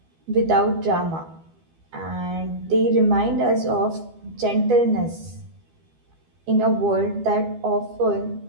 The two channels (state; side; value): late; left; 12 ms